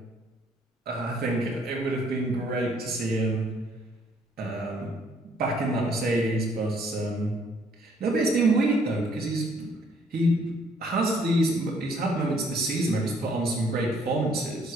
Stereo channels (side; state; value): both; normal; correlation 0.64